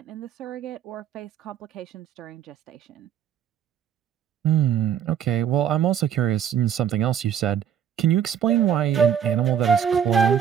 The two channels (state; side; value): quieter; left; 9.0 dB